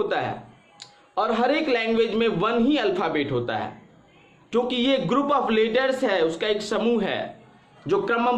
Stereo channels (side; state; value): both; identical; correlation 1.00